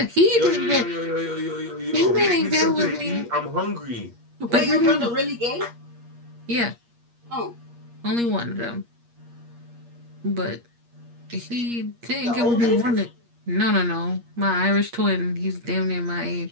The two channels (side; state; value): left; late; 8.5 ms